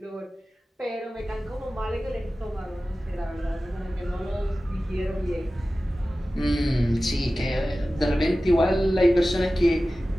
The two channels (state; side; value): normal; both; correlation 0.96